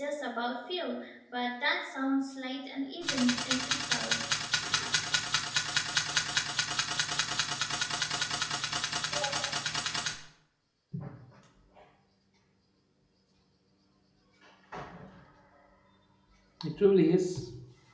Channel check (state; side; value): identical; both; correlation 1.00